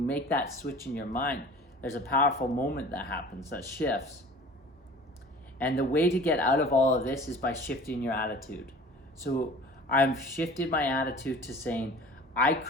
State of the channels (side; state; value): both; normal; correlation 0.44